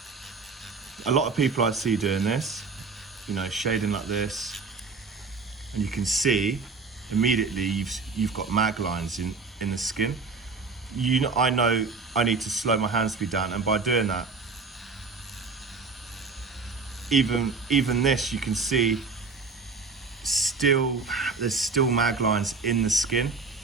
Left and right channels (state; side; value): quieter; left; 4.4 dB